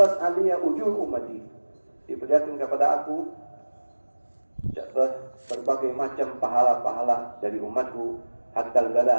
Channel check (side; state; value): both; inverted; correlation -1.00